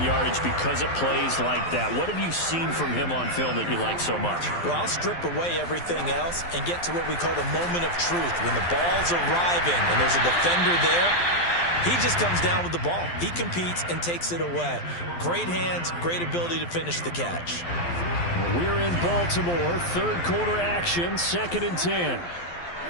yardage because of plays like that. What have you seen from him on film that you like so much? Well, I'll strip away everything else and get to what we call the moment of truth. When the ball's arriving and there's a defender there, he just comes down with the ball. He competes and takes it away. Great hands, great ability to finish the catch. We're in Baltimore. 3rd quarter action, 2nd and 10.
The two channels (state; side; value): late; right; 12 ms